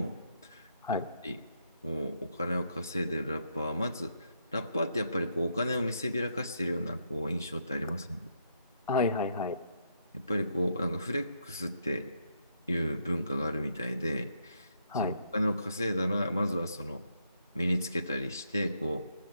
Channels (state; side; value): inverted; both; correlation -0.76